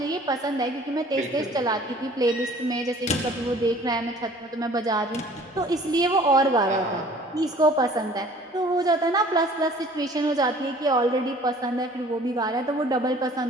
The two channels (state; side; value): normal; both; correlation 0.51